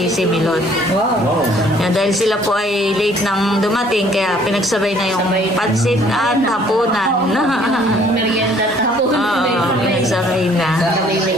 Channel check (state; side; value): normal; both; correlation 0.59